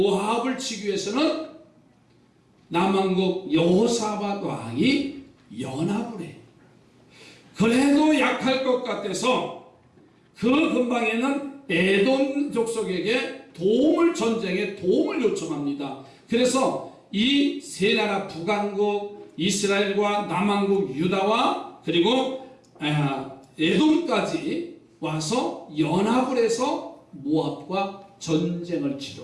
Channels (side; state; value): both; identical; correlation 1.00